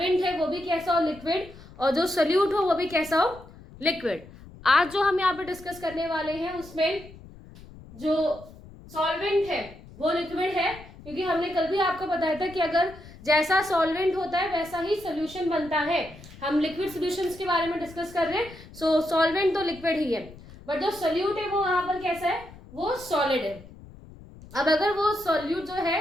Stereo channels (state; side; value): noise; left; rumble, 19 dB below the sound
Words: है वो भी कैसा हो लिक्विड और जो सोल्यूट हो वो भी कैसा हो लिक्विड। आज जो हम यहाँ पे डिस्कस करने वाले हैं उसमें जो सॉल्वेंट है वो लिक्विड है, क्योंकि हमने कल भी आपको बताया था कि अगर जैसा सॉल्वेंट होता है वैसा ही सोल्यूशन बनता है। हम लिक्विड सॉल्यूशंस के बारे में डिस्कस कर रहे हैं। सो सॉल्वेंट तो लिक्विड ही है, बट जो सोल्यूट है वो यहाँ पर कैसा है, वो सॉलिड है। अब अगर वो सोल्यूट जो है